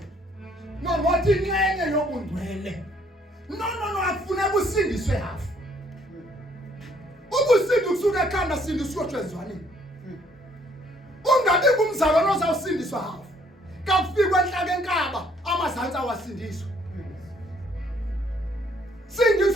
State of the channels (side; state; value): both; normal; correlation 0.64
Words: Wathi inxenye yobungcwele. No afuna kusindiswe hafu. Ubusindi kusuka ekhanda sindiswe tshezwaneni. Ungabi kumzalwane ozawusindiswa hafu. Kakufika enhlaka enkaba amazantsi awasindiswa.